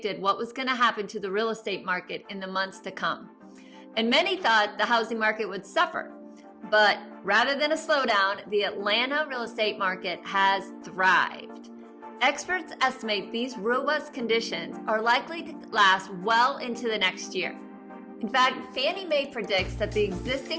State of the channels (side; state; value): both; identical; correlation 1.00